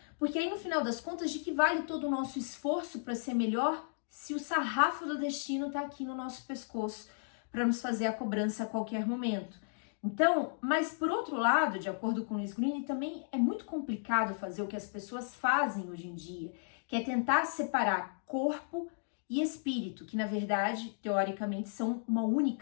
Porque aí no final das contas, de que vale todo o nosso esforço para ser melhor se o sarrafo do destino está aqui no nosso pescoço para nos fazer a cobrança a qualquer momento? Então, mas por outro lado, de acordo com Luiz Green, também é muito complicado fazer o que as pessoas fazem hoje em dia, que é tentar separar corpo e espírito, que na verdade, teoricamente, são uma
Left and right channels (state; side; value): silent; right; digital silence